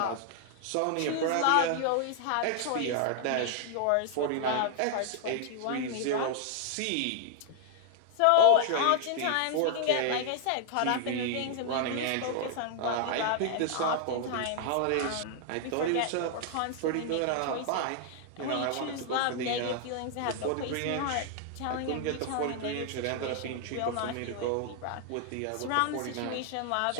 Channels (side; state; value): both; different; correlation 0.00